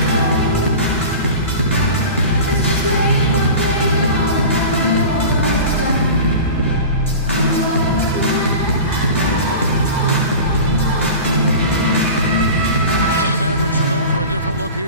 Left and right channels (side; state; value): both; inverted; correlation -0.34